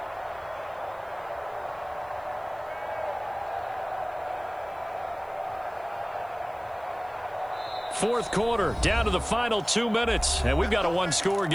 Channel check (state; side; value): noise; right; hiss, 29 dB below the sound